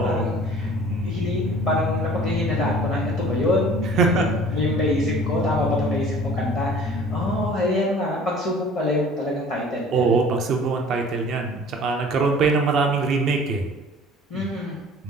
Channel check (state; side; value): normal; both; correlation 0.48